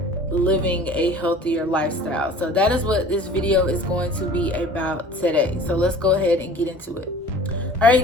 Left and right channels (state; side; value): normal; both; correlation 0.45